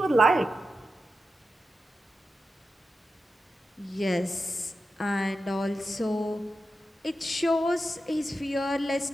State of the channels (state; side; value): normal; both; correlation 0.90